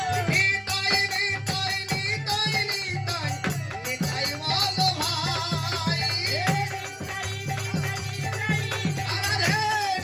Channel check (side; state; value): both; identical; correlation 1.00